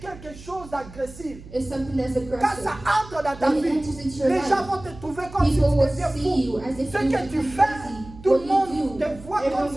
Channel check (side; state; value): right; noise; hum, 17 dB below the sound